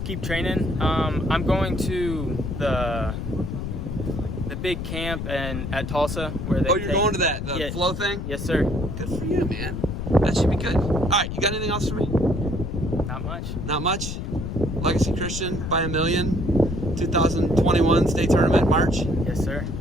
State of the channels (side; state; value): left; noise; rumble, 5 dB below the sound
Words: keep training. I'm going to the big camp at Tulsa where they. Oh, you're going to the flow thing? Yes, sir. Good for you, man. That should be good. All right. You got anything else for me? Not much. Not much. Legacy Christian by a million. 2021 state tournament March. Yes, sir.